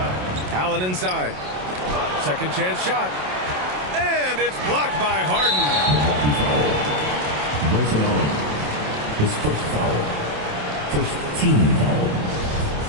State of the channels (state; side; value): late; left; 27 ms